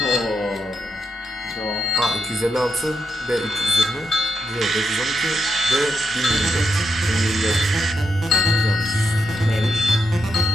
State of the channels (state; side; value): normal; both; correlation 0.81